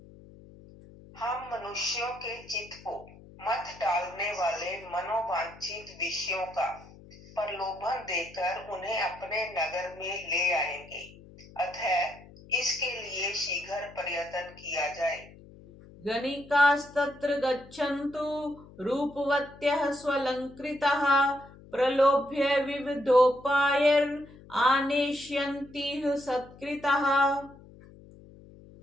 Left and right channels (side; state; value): left; noise; hum, 21 dB below the sound